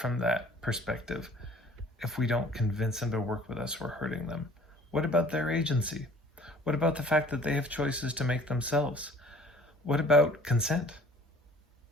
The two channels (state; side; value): normal; both; correlation 0.52